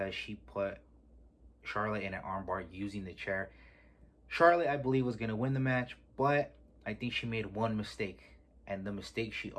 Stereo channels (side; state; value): both; identical; correlation 1.00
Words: she put Charlotte in an armbar using the chair. Charlotte, I believe, was going to win the match, but I think she made one mistake. And the mistake she